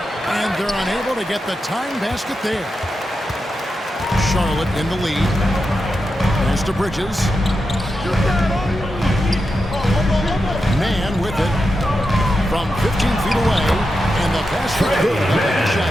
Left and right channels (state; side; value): normal; both; correlation 0.88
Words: And they're unable to get the time basket there. Charlotte in the lead. Pass to Bridges. Mann with it. From 15 feet away, and the pass for good. A